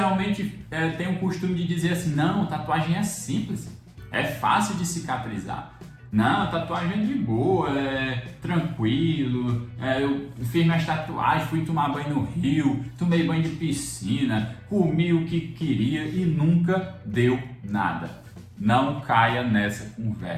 têm o costume de dizer assim, não, tatuagem é simples, é fácil de cicatrizar. Não, tatuagem é de boa, é tranquilo, eu fiz minhas tatuagens, fui tomar banho no rio, tomei banho de piscina, comi o que queria e nunca deu nada. Não caia nessa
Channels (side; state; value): both; identical; correlation 1.00